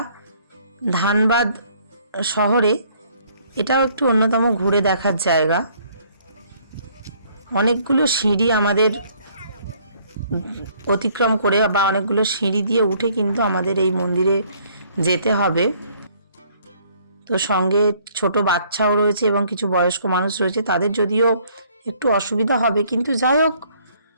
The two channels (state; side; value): inverted; both; correlation -0.62